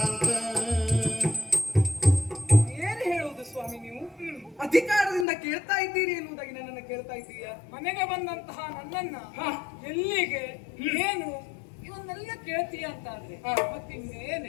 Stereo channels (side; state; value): right; drops out; at 5.2 s